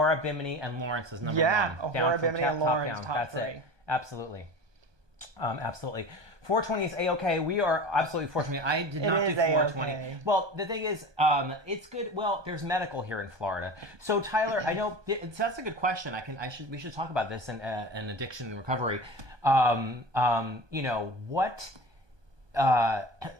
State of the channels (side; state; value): left; late; 1.2 ms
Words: Bimini, and Lawrence is number 1. Yeah, Ahura, Bimini, and Lawrence, top 3. It. Absolutely. Absolutely. 420 is A-OK. We are absolutely 420. I did not do 420. A-okay. Well, the thing is, it's good. Well, there's medical here in Florida. So, Tyler, I know that's a good question. We should talk about this in addiction and recovery. You know, what